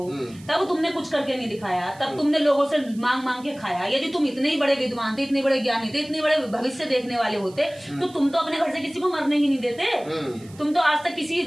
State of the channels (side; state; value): right; noise; hiss, 24 dB below the sound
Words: तब तुमने कुछ करके नहीं दिखाया, तब तुमने लोगों से मांग मांग के खाया। यदि तुम इतने ही बड़े विद्वान थे, इतने बड़े ज्ञानी थे, इतने बड़े भविष्य देखने वाले होते, तो तुम तो अपने घर से किसी को मरने ही नहीं देते। तुम तो आज तक किसी